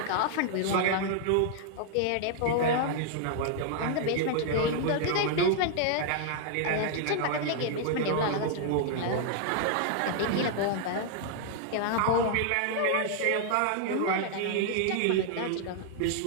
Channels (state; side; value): different; both; correlation 0.00